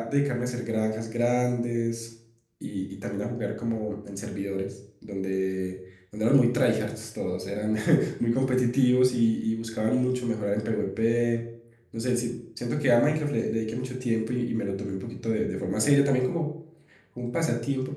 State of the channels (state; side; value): identical; both; correlation 1.00